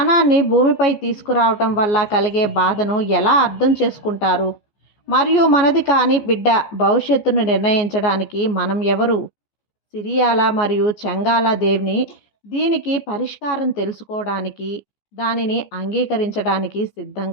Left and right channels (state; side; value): late; right; 14 ms